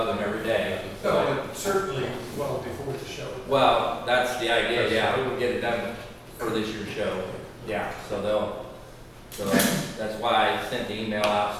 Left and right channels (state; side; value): identical; both; correlation 1.00